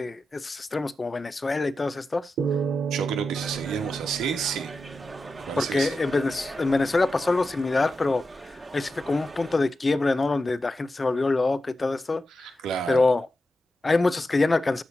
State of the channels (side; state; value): both; normal; correlation 0.90